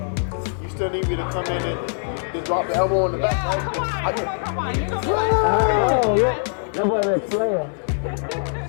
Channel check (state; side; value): silent; right; 64 dB below the other